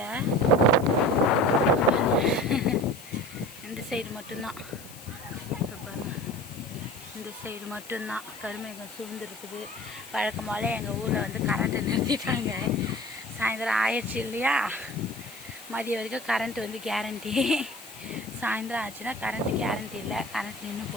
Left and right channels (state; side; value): noise; left; hiss, 18 dB below the sound